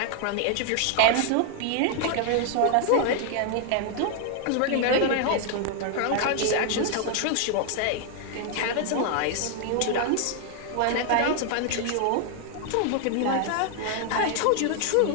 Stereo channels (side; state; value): both; different; correlation 0.00